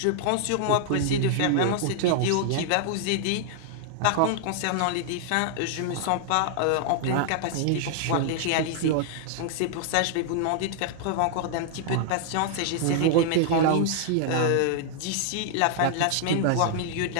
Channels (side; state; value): both; different; correlation -0.01